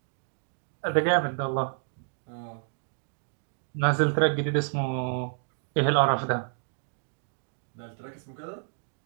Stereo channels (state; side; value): silent; left; digital silence